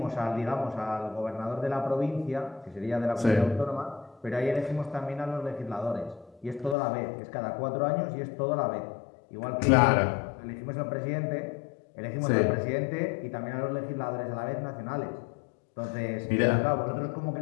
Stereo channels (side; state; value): right; drops out; at 6.8 s